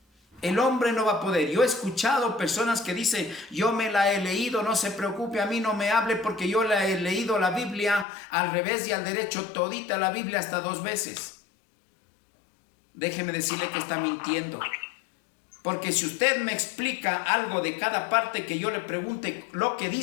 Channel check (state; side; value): drops out; right; at 8.1 s